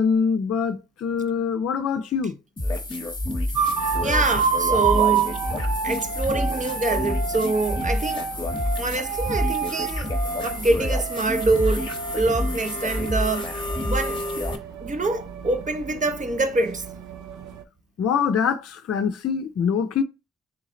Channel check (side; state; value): both; normal; correlation 0.51